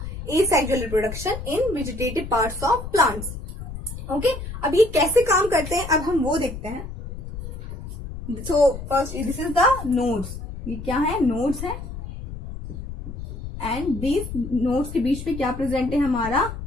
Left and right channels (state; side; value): noise; left; rumble, 9 dB below the sound